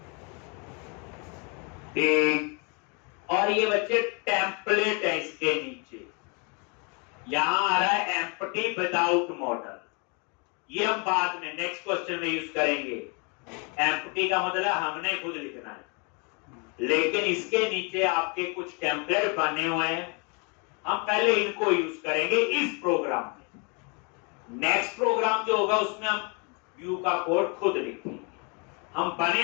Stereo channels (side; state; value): right; quieter; 33.8 dB